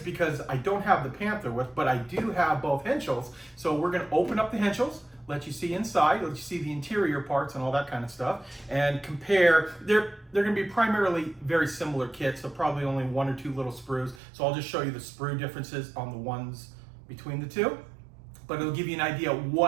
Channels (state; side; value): drops out; left; at 14.2 s